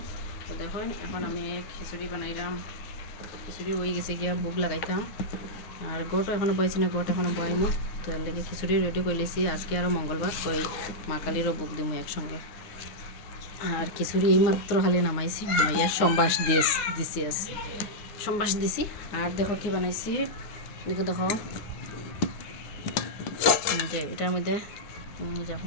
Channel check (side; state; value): right; late; 9.6 ms